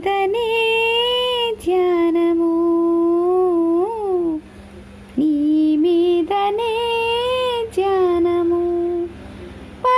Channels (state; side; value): identical; both; correlation 1.00